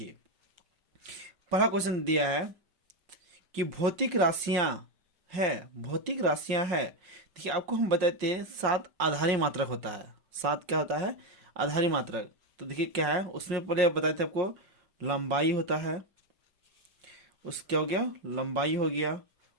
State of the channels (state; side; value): late; left; 5.7 ms